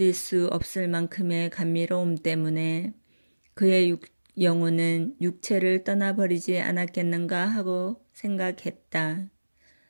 수 없을 만큼의 감미로움 때문에 그의 영혼은 육체를 떠나버리지 않았겠는가 하고 생각했다.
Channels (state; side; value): inverted; both; correlation -1.00